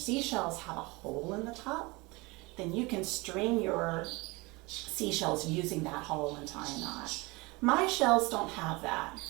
have a hole in the top, then you can string your seashells using that hole and tie a knot. My shells don't have that,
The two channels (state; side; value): quieter; left; 24.5 dB